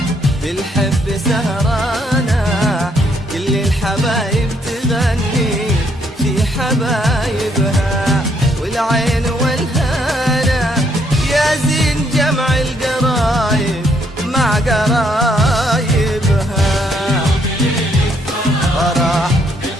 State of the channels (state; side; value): normal; both; correlation 0.71